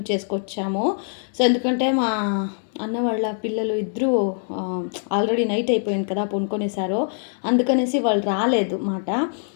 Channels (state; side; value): silent; right; 63 dB below the other